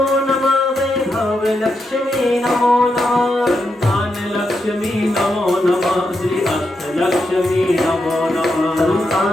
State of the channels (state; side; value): normal; both; correlation 0.84